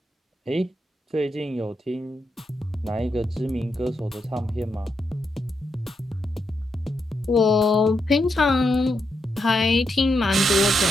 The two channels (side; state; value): both; normal; correlation 0.83